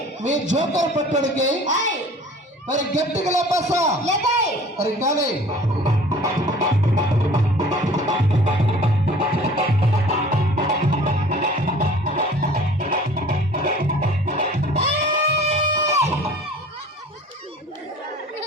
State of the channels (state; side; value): normal; both; correlation 0.47